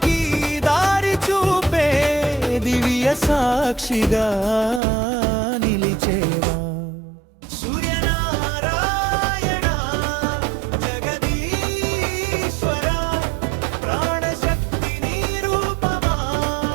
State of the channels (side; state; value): left; drops out; at 4.8 s